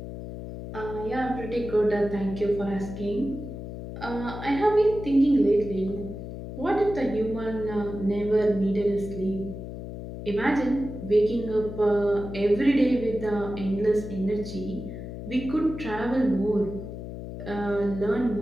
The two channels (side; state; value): left; noise; hum, 9 dB below the sound